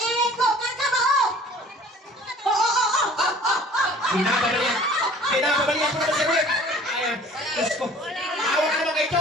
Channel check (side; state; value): both; normal; correlation 0.49